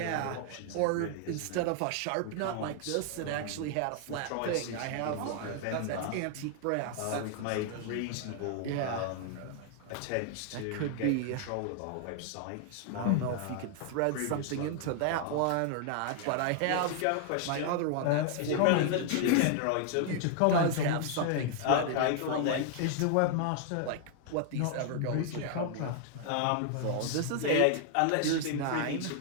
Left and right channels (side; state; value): both; different; correlation 0.00